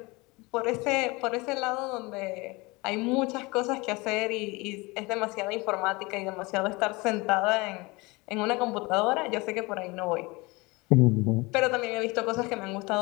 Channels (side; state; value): right; quieter; 24.4 dB